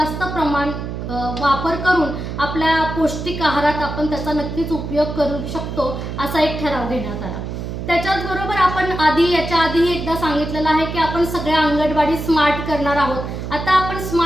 प्रमाण वापर करून आपल्या पौष्टिक आहारात आपण त्याचा नक्कीच उपयोग करू शकतो असा एक ठराव घेण्यात आला। त्याच्याचबरोबर आपण याच्या आधी एकदा सांगितलेलं आहे की आपण सगळ्या अंगणवाडी स्मार्ट करणार आहोत। आता आपण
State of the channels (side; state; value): right; noise; hum, 6 dB below the sound